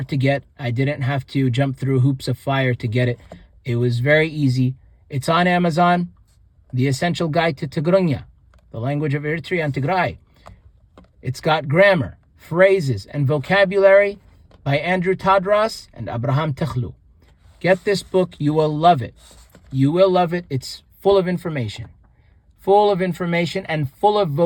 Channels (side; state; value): both; identical; correlation 1.00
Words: to get. I didn't have to jump through hoops of fire to get it. It was very easy. It's on Amazon. The Essential Guide to Tigrigna, the language of Eritrea and Tigray. It's got grammar, phrases, and vocabulary by Andrew Tadros and Abraham Techlu. Get this book. You will love it. You will love it. It's full of information. Full of information and full of